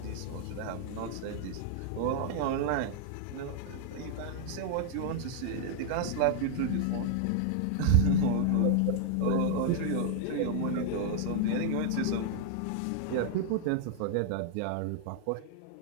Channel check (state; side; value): different; both; correlation 0.00